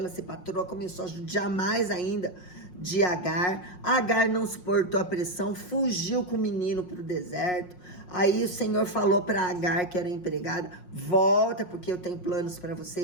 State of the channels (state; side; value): late; right; 5.5 ms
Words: ser patroa, começou a judiar mais ainda de Agar. Agar não suportou a pressão, fugiu com o menino para o deserto. Aí o Senhor falou para Agar, que era empregada: volta, porque eu tenho planos para você